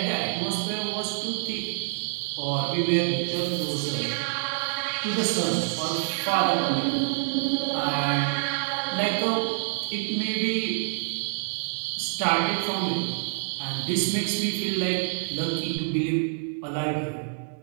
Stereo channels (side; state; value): left; silent; digital silence